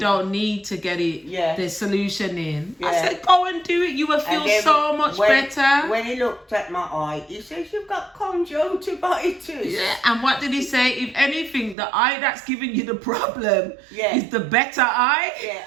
need to get the solution in. I said, go and do it. You will feel so much better. When he looked at my eye, he says, you've got conjunctivitis. Yeah, and what did he say? If anything, the eye that's giving you the problem is the better eye. Yeah,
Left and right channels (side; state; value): left; drops out; at 11.8 s